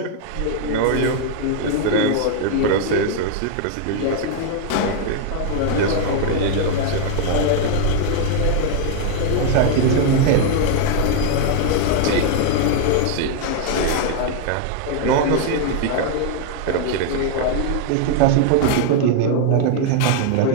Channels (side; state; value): both; different; correlation 0.00